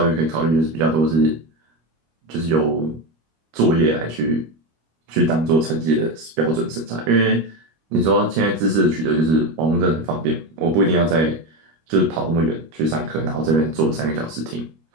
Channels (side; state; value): left; late; 25 ms